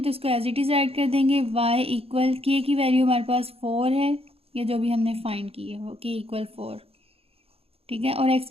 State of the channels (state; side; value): late; left; 0.28 ms